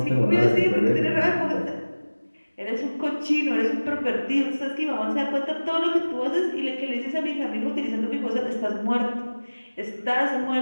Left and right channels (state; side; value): inverted; both; correlation -1.00